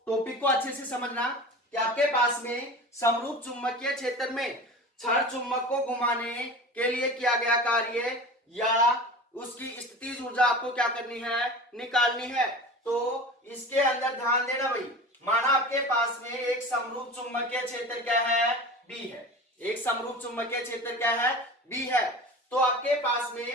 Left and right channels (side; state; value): both; normal; correlation 0.34